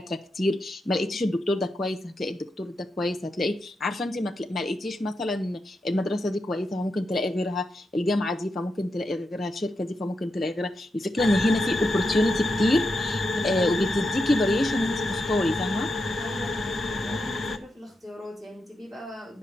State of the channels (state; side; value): normal; both; correlation 0.86